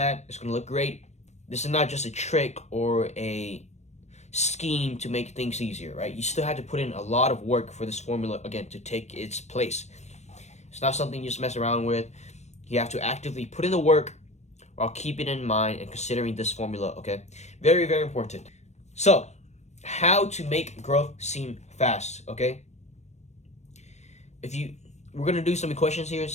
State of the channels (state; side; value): late; right; 0.33 ms